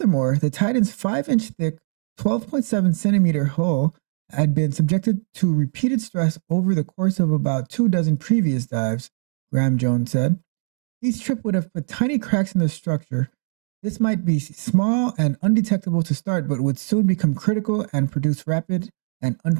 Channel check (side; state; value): left; silent; 60 dB below the other